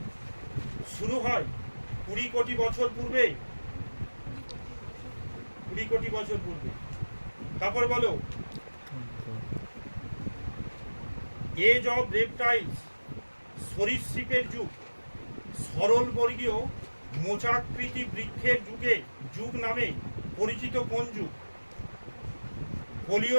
শুরু হয় 20 কোটি বছর পূর্বে। 20 কোটি বছর পূর্বে। তারপর বলো, এজ অফ রেপটাইলস, সরীসৃপের যুগ। সরলবর্গীয় মোচাকৃতি বৃক্ষের যুগ নামে পরিচিত কোন যুগ?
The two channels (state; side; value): inverted; both; correlation -1.00